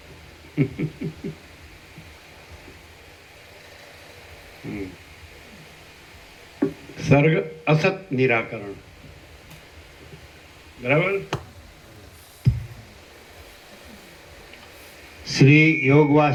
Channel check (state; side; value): identical; both; correlation 1.00